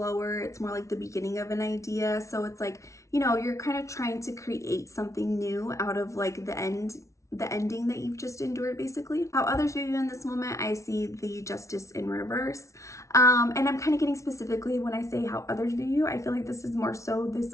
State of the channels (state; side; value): late; right; 0.14 ms